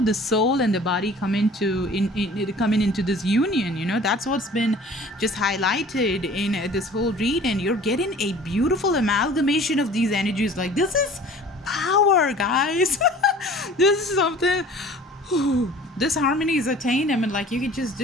the soul and the body come coming into this union. That's what's been just highlighted in this whole read, and you're getting a beautiful amalgamation of these energies. Like, this is power, guys. This is something. This harmony is attained. I mean, like, you can just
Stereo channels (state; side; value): normal; both; correlation 0.47